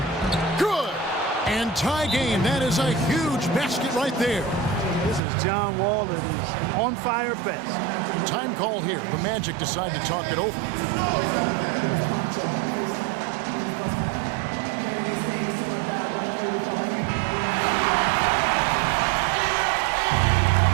Good. And tie game. That is a huge basket right there. This is John Wall that is on fire best. Time call here. The Magic decide to talk it over.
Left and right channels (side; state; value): left; drops out; at 5.2 s